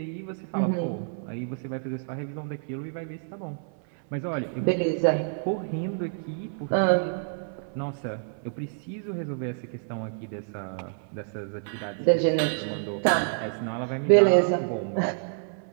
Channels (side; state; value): left; silent; 59 dB below the other